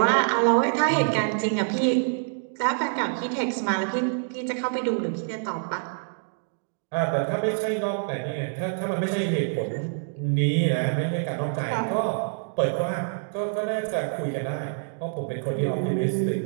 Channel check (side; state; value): left; silent; digital silence